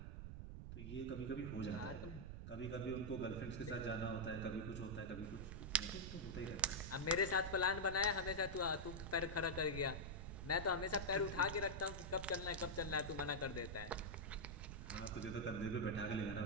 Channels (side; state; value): right; noise; rumble, 7 dB below the sound